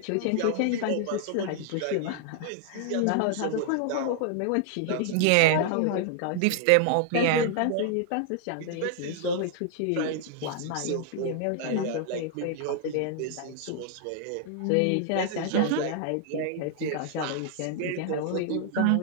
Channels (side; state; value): both; different; correlation 0.00